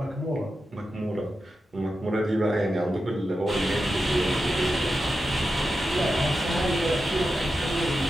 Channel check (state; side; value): normal; both; correlation 0.90